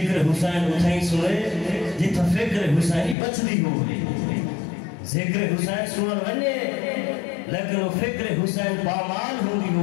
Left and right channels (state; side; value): drops out; right; at 3.2 s